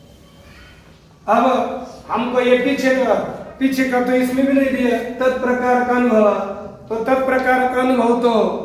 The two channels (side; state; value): both; identical; correlation 1.00